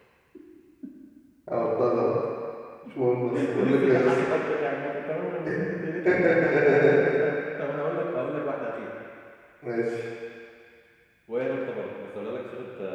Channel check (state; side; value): identical; both; correlation 1.00